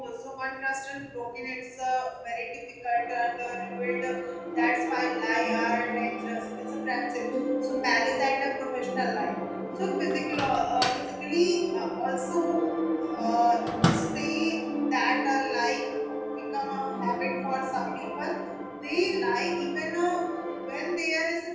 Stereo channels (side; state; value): both; identical; correlation 1.00